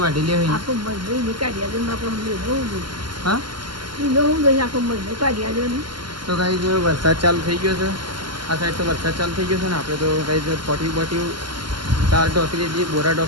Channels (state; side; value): late; left; 0.72 ms